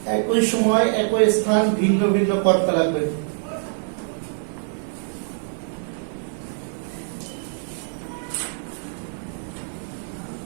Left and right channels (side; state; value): left; silent; 59 dB below the other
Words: একই সময় একই স্থান, ভিন্ন ভিন্ন কর্তা লাগবে।